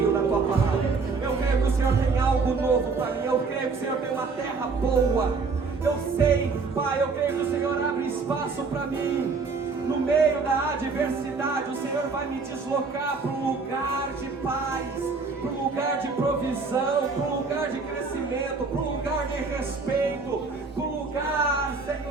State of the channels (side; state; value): left; quieter; 4.5 dB